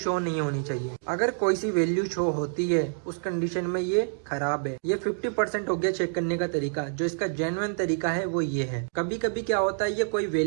नहीं होनी चाहिए। अगर कोई सी वैल्यू शो होती है उस कंडीशन में ये खराब है। ये 50% हो गया चेक करने का तरीका। जो इसका जेन्युइन तरीका है वो ये है। कभी कभी क्या होता है ये कोई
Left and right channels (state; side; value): silent; left; digital silence